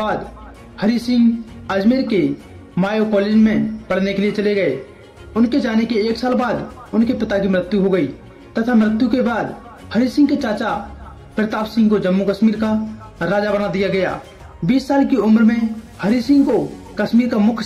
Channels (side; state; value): both; identical; correlation 1.00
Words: हरि सिंह अजमेर के मायो कॉलेज में पढ़ने के लिए चले गए। उनके जाने के 1 साल बाद उनके पिता की मृत्यु हो गई तथा मृत्यु के बाद हरि सिंह के चाचा प्रताप सिंह को जम्मू कश्मीर का राजा बना दिया गया। 20 साल की उम्र में हरि सिंह को कश्मीर का मुख्य